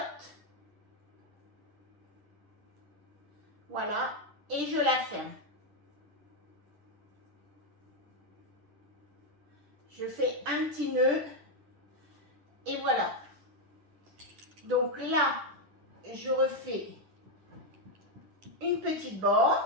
Voilà. Et je la ferme. Je fais un petit nœud. Et voilà. Donc là, je refais une petite bande.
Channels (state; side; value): late; left; 10 ms